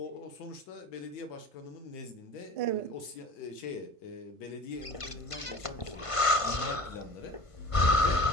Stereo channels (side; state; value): right; late; 1.5 ms